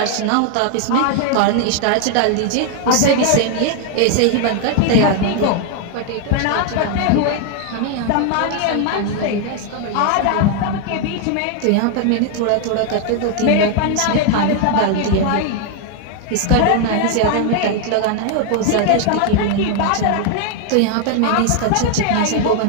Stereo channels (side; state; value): both; different; correlation 0.00